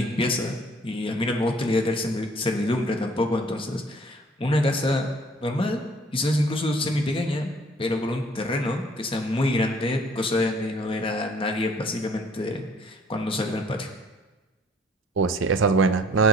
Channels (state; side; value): normal; both; correlation 0.57